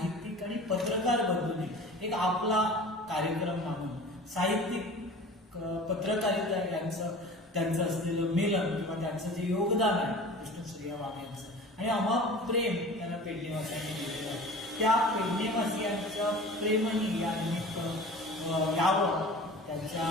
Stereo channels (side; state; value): both; normal; correlation 0.40